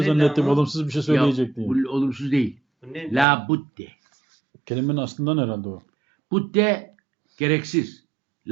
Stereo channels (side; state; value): left; drops out; at 3.2 s